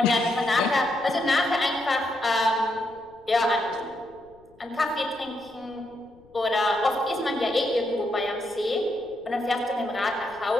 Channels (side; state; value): left; noise; rumble, 30 dB below the sound